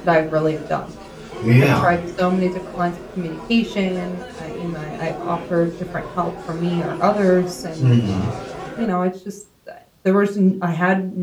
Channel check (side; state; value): both; identical; correlation 1.00